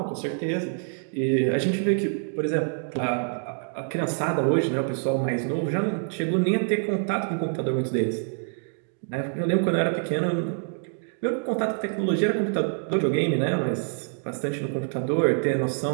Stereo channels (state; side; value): silent; left; 61 dB below the other